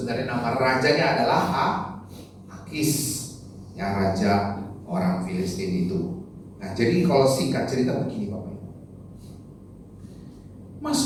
nama rajanya adalah Akis, yang raja orang Filistin itu. Nah, jadi kalau singkat cerita begini Bapak Ibu.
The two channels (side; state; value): both; identical; correlation 1.00